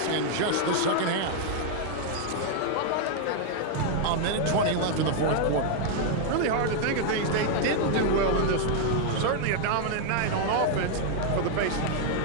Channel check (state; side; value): different; both; correlation 0.00